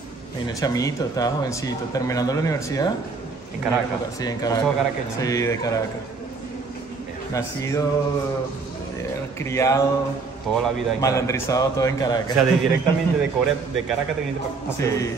Vine chamito, estaba jovencito, terminando la universidad. ¿En Caracas? Sí, en Caracas. ¿Sos caraqueño? Sí, de Caracas. Nacido, criado, Toda la vida en malandrizado todo en Caracas. O sea, directamente de Corea, de Caracas te viniste para Sí,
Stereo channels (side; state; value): left; quieter; 4.3 dB